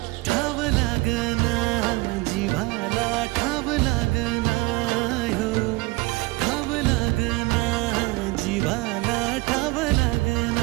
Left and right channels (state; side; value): quieter; left; 23.0 dB